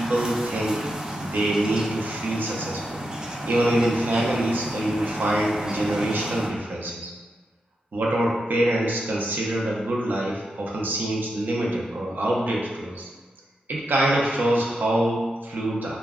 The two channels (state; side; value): normal; both; correlation 0.85